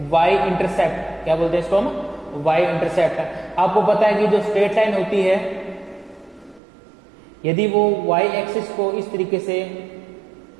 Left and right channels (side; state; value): left; drops out; at 6.6 s